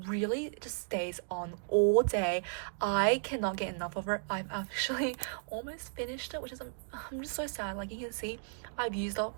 just stays on all day. I cannot get enough of it. I've actually almost finished it, which is I'm just so sad. Like you can see, I've used up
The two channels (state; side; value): silent; left; digital silence